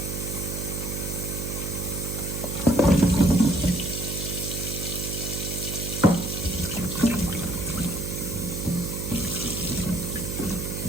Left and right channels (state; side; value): noise; right; hum, 4 dB below the sound